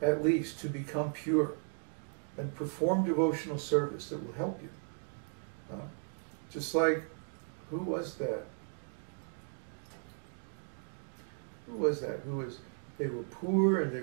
at least, to become pure and perform devotional service that will help you. Just like, who was that? They were poor and they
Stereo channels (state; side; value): silent; left; 54 dB below the other